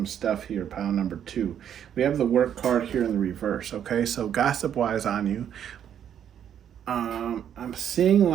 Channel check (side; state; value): left; quieter; 9.4 dB